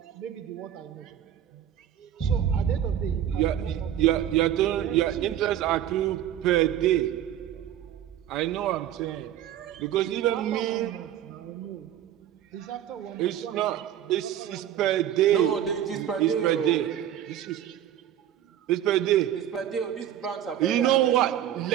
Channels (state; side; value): quieter; left; 11.0 dB